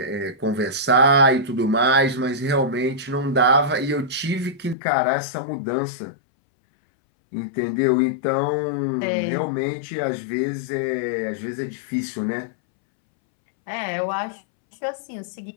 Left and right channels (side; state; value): right; drops out; at 4.8 s